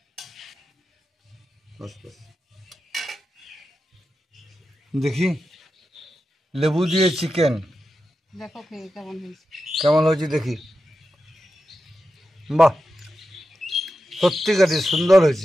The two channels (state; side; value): normal; both; correlation 0.90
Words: বাস বাস। দেখি লেবু দিয়ে চিকেন দেখো খেয়ে কেমন হয়েছে। কেমন হয়েছে দেখি। বাহ, সত্যিকারই সুন্দর